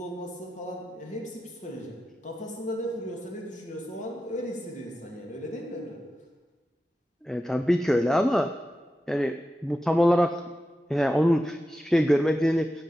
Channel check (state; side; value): normal; both; correlation 0.91